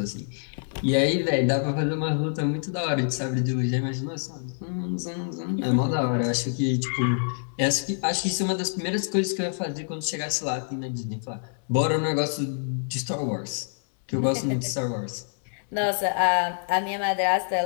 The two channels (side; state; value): right; silent; digital silence